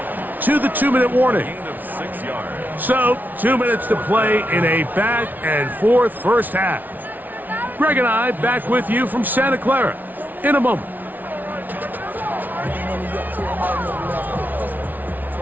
to the 2-minute warning. So, 2 minutes to play in a back-and-forth first half. Greg and I back with you from Santa Clara in a moment.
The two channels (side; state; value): left; late; 0.082 ms